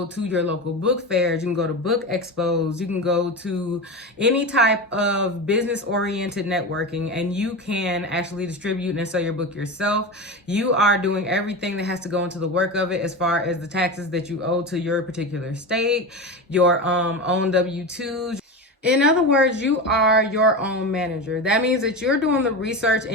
to your local book fairs, you can go to book expos, you can go to any type of business-oriented networking, and you can actually distribute and sell your book yourself. You are doing everything that has to go into the work of it as far as the taxes that you owe to your particular state, your own W-2s. In other words, you are your own manager. That means that you're doing the research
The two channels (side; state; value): both; normal; correlation 0.23